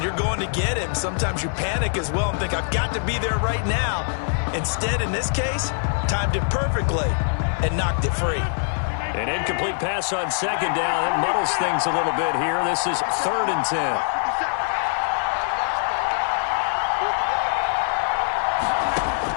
you're going to get him, sometimes you panic as well and think, I've got to be there right now. Instead, in this case, timed it perfectly and knocked it free. An incomplete pass on 2nd down. It muddles things a little bit here. This is 3rd and 10.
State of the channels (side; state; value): right; silent; digital silence